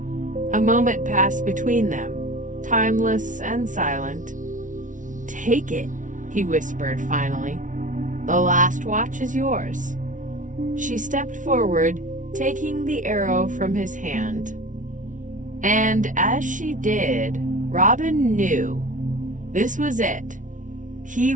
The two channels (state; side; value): late; left; 0.37 ms